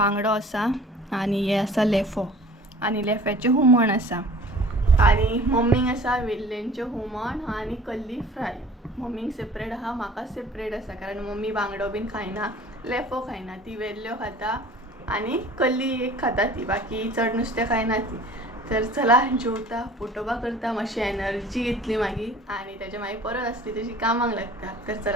आसा आनी हें आसा लेफो आनी लेफ्याचें हुमण आसा आनी मम्मीक आसा वेल्लेंचें हुमण आनी कल्ली फ्राय मम्मीक सेपरेट आहा म्हाका सेपरेट आसा कारण मम्मी बांगडो बीन खायना लेफो खायना ती वेल्ल्यो खाता आनी कल्ली एक खाता ती बाकी चड नुस्तें खायना ती तर चला जेवता फोटोबा करता मातशी एनर्जी येतली मागीर आनी तेच्या मागीर परत आसली तशी कामाक लागता तर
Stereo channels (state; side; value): normal; both; correlation 0.47